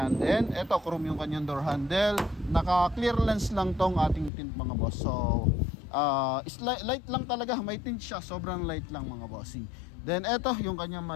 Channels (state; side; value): drops out; right; at 4.3 s